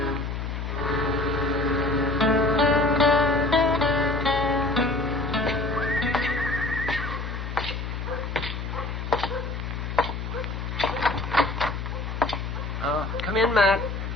Come in, Matt.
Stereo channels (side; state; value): left; noise; hum, 5 dB below the sound